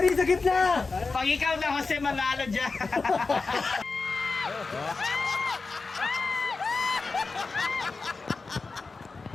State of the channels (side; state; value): right; quieter; 4.1 dB